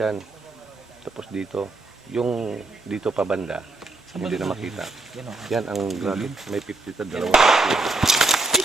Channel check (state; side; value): quieter; left; 3.3 dB